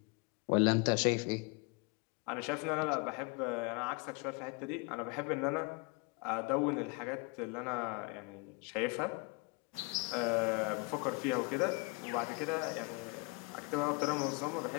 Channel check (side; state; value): right; quieter; 29.5 dB